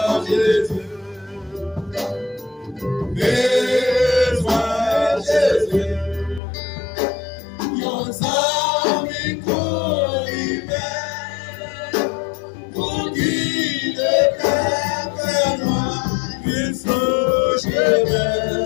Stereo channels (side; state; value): right; drops out; at 6.4 s